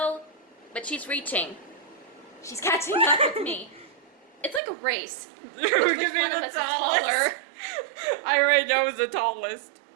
but she's reaching. She's catching up with me. It's like a race. Which one of us is taller? I already know who's the tallest.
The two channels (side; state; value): left; drops out; at 4.6 s